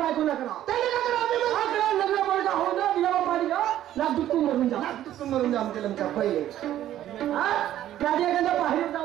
ना करा, त्याने का करा? लग्न पडता हो ना दिला पाणी लाख दुःखून मरून जा, दुःखून मरून जा आमच्या लमच्या पहिले. त्याच्या एखाद्या बाहेर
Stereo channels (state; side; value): quieter; left; 12.4 dB